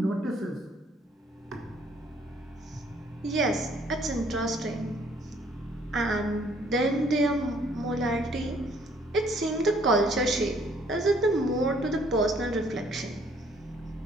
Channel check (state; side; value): normal; both; correlation 0.63